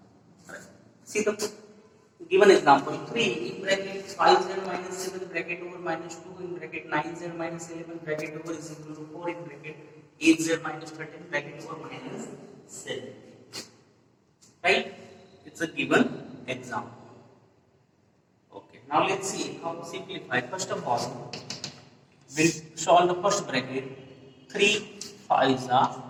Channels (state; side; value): identical; both; correlation 1.00